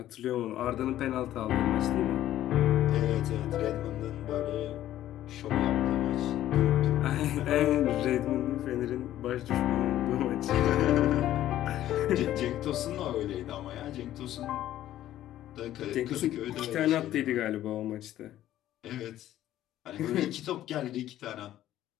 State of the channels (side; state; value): right; quieter; 13.0 dB